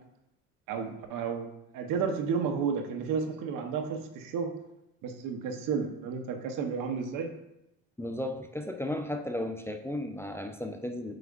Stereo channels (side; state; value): left; quieter; 3.9 dB